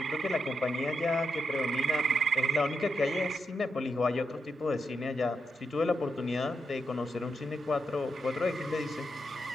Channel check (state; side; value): normal; both; correlation 0.84